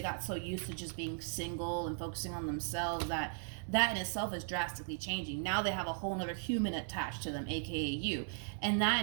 got so used to just being single and focusing on themselves that in itself is drastically changing. Now they have a whole nother human attached to them, aka you. And that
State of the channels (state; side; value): silent; left; digital silence